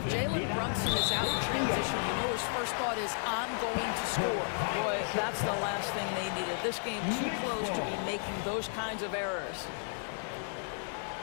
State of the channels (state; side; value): silent; right; 56 dB below the other